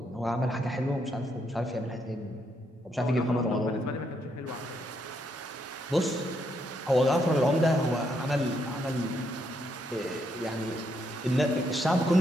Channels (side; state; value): both; normal; correlation 0.76